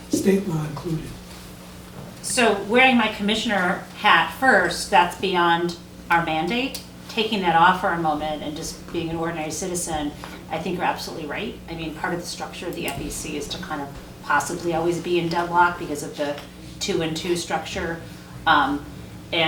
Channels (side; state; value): both; identical; correlation 1.00